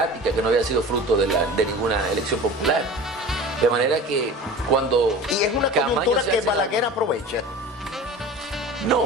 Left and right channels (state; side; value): normal; both; correlation 0.36